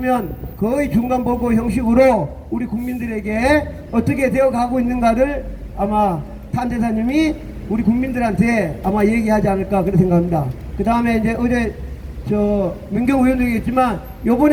거의 중간 보고 형식으로 우리 국민들에게 어떻게 되어 가고 있는가를 아마 탄대사님이 우리 국민들한테 아마 얘기하지 않을까 그렇게 생각합니다. 그 다음에 이제 어제 민경우 의원도 얘기했지만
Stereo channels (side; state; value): both; identical; correlation 1.00